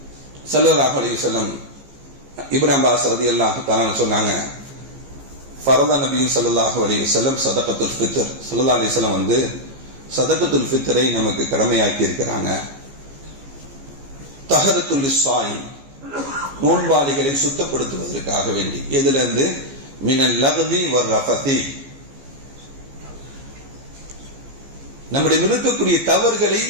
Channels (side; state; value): left; late; 15 ms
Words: ஸல்லல்லாஹு அலைஹி வஸல்லம் இப்னு அப்பாஸ் ரலியல்லாஹு தஆலா சொன்னாங்க, ஃபரத நபி ஸல்லல்லாஹு அலைஹி வஸல்லம் சதகத்துல் ஃபித்ர். ஸல்லல்லாஹு அலைஹி வஸல்லம் வந்து சதகத்துல் ஃபித்ரை நமக்கு கடமையாக்கி இருக்கிறாங்க. தஹரத்துல் லிஸ்ஸாயிம், நோன்பாளிகளை சுத்தப்படுத்துவதற்காக வேண்டி. எதுல இருந்து? மினல் லக்வி வர் ரஃபதி, நம்முடைய இருக்கக்கூடிய தவறுகளை